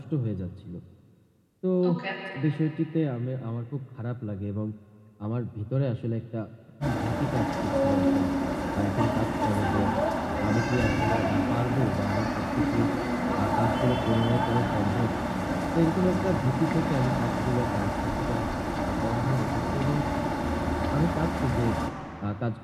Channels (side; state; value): both; identical; correlation 1.00